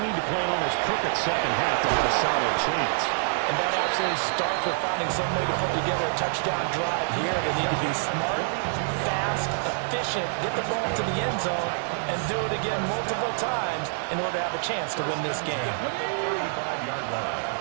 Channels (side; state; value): left; silent; digital silence